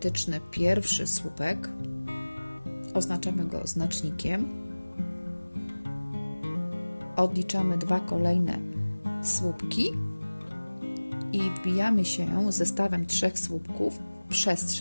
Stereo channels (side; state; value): both; inverted; correlation -1.00